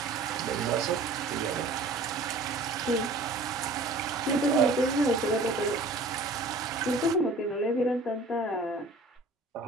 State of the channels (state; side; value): quieter; left; 3.0 dB